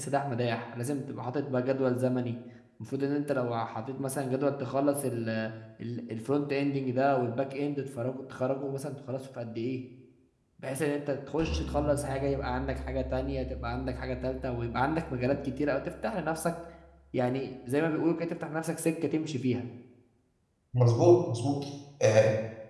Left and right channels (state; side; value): identical; both; correlation 1.00